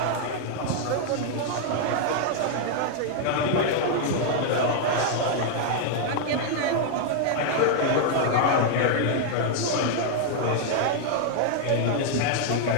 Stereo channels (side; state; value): both; different; correlation 0.00